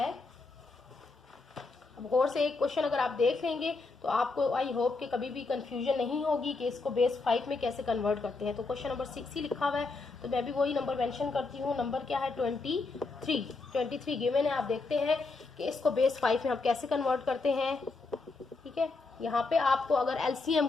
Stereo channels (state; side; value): quieter; right; 3.8 dB